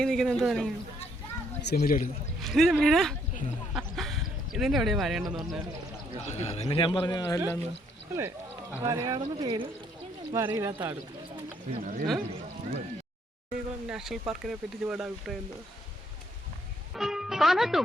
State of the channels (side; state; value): both; normal; correlation 0.69